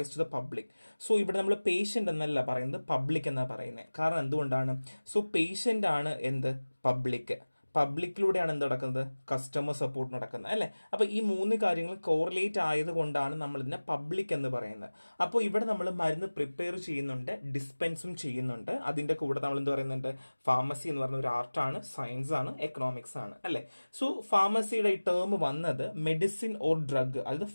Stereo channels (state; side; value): inverted; both; correlation -1.00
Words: to the public. So ഇവിടെ നമ്മൾ പേഷ്യന്റ് എന്നല്ല പറയുന്നത്, പബ്ലിക് എന്നാണ് പറയുന്നത്. കാരണം എന്തുകൊണ്ടാണ്? സോ പേഷ്യന്റ് ആണ് എന്ത്? പബ്ലിക്കിലൂടെയാണ് എന്ത് നടക്കുന്നത്? കസ്റ്റമർ സപ്പോർട്ട് നടക്കുന്നത്, അല്ലേ? അപ്പോൾ ഈ മൂന്ന് കാര്യങ്ങൾ കോറിലേറ്റ് ആയതുകൊണ്ടാണ് നമ്മൾ ഇതിനെ പബ്ലിക് എന്ന് പറയുന്നത്. അപ്പോൾ ഇവിടെ നമ്മൾ മരുന്ന് പ്രിപ്പയർ ചെയ്യുന്നുണ്ട്, ഡിസ്പെൻസും ചെയ്യുന്നുണ്ട്. അതിൻ്റെ കൂടെ നമ്മൾ എന്ത് പറയുന്നുണ്ട്? ഫാർമസി എന്ന് പറയുന്ന ഒരു ആർട്ടാണ്, സയൻസ് ആണ്, എക്കണോമിക്സ് ആണ്, അല്ലേ? സോ ഫാർമസിയുടെ ഈ ടേം വന്നത് മെഡിസിൻ ഓർ ഡ്രഗ്, അതായത്